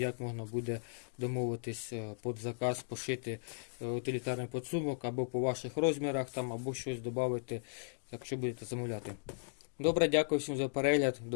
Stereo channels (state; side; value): silent; right; digital silence